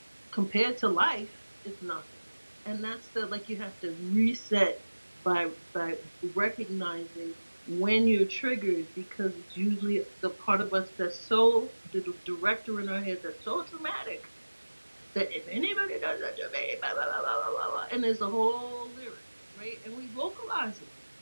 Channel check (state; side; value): inverted; both; correlation -1.00